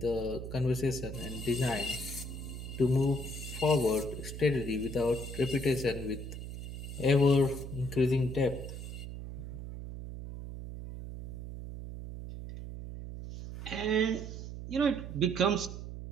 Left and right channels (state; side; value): noise; right; hum, 8 dB below the sound